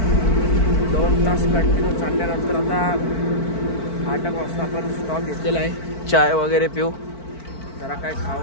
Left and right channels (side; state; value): right; late; 4.5 ms